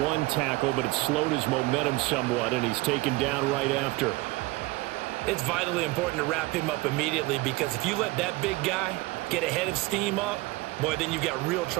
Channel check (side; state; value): left; quieter; 21.5 dB